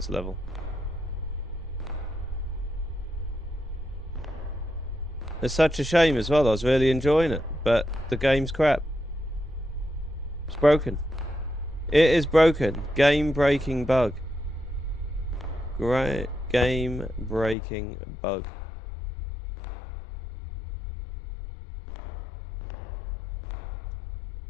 level. It's such a shame as well. I was really enjoying it, but the game's crap. It's broken. It is broken. Game-breaking bug. Great game-breaking bug.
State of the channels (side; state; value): right; drops out; at 17.6 s